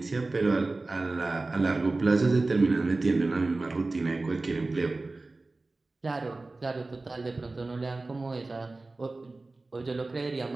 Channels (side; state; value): left; quieter; 3.3 dB